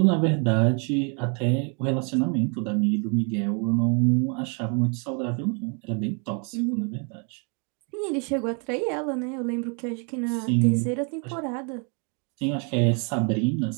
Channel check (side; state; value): left; quieter; 37.5 dB